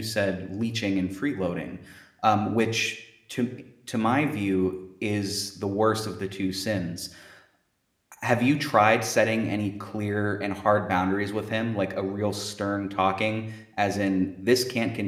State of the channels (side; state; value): both; identical; correlation 1.00